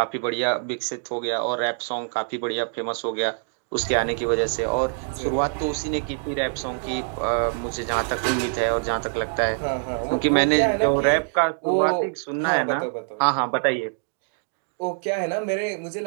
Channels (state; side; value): silent; left; digital silence